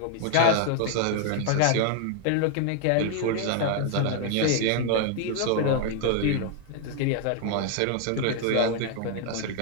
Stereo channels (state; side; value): different; both; correlation 0.00